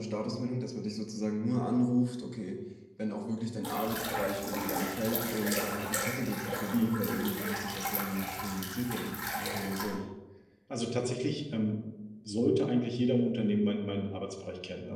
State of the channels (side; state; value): both; identical; correlation 1.00